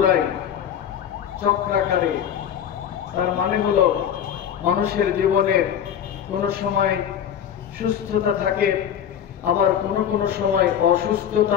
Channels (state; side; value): quieter; right; 9.2 dB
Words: চক্রাকারে। তার মানে হলো মানুষের জীবনের কোন সময় সুস্থতা থাকে, আবার কোন সময়